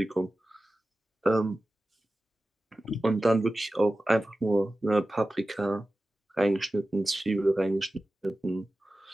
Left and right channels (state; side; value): normal; both; correlation 0.95